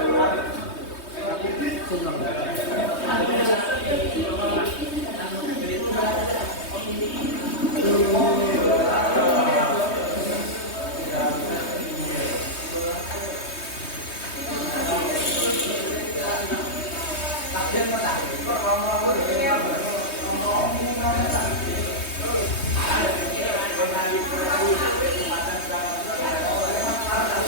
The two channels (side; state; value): right; late; 3.2 ms